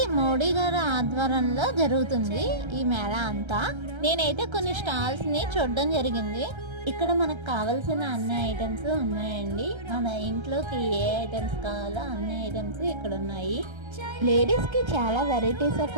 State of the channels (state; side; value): late; left; 1.3 ms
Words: మోడీ గారి ఆధ్వర్యంలో జరుగుతుంది ఈ మేళ అంతా. నేనైతే కొన్ని స్టాల్స్ ని చూడడం జరిగింది. ఇక్కడ మనకు కావాల్సిన అన్ని ఐటమ్స్ ఉన్నాయండి. మన ఇంట్లోకి ఏ ఐటమ్స్ కావాలో అన్ని ఐటమ్స్ ఇక్కడ ఉన్నాయి. లేడీస్ కి చాలా వెరైటీస్